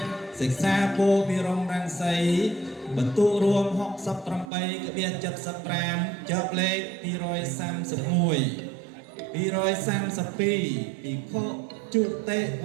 សិក្សាពោពិរមរាំងសីបន្ទុករួម68ក្បៀក75ចប់លេខ231 232ភិក្ខុជុតិ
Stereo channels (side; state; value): left; drops out; at 4.5 s